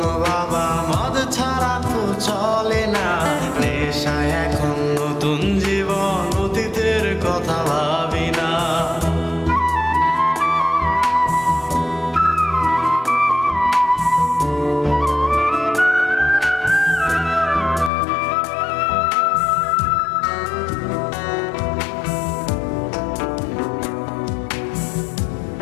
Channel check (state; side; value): drops out; right; at 17.9 s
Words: বাবা, মদ ছাড়া তো চলে না, নেশায় এখন নতুন জীবন, অতীতের কথা ভাবি না।